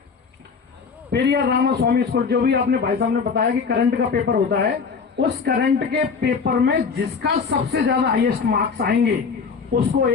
पेरियार रामास्वामी स्कॉलर, जो भी आपने भाई साहब ने बताया कि करंट का पेपर होता है, उस करंट के पेपर में जिसका सबसे ज्यादा हाईएस्ट मार्क्स आएंगे उसको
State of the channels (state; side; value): quieter; right; 5.5 dB